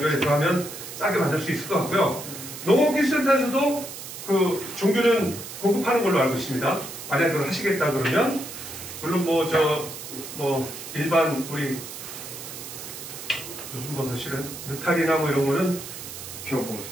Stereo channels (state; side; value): noise; right; hiss, 11 dB below the sound